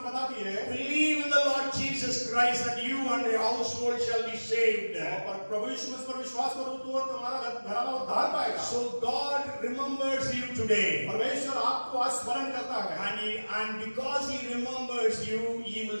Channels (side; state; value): both; inverted; correlation -1.00